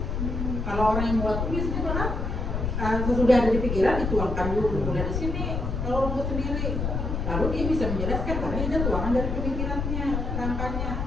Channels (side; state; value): left; noise; rumble, 2 dB below the sound